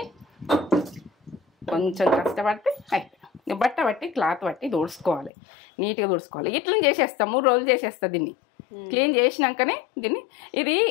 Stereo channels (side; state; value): right; drops out; at 5.3 s